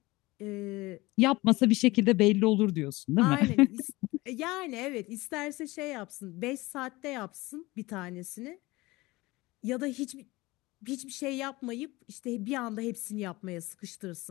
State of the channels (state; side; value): quieter; right; 21.0 dB